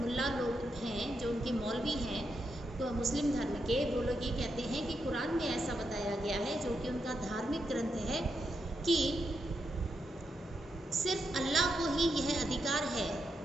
लोग हैं, जो उनके मौलवी हैं तो मुस्लिम धर्म के, वो लोग ये कहते हैं कि कुरान में ऐसा बताया गया है, जो कि उनका धार्मिक ग्रंथ है, कि सिर्फ अल्लाह को ही यह अधिकार है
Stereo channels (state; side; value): normal; both; correlation 0.83